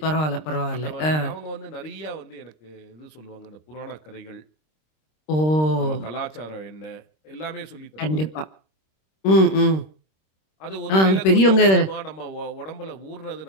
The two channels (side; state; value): right; late; 26 ms